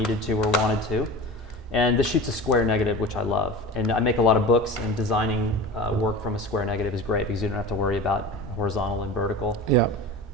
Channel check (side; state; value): both; normal; correlation 0.33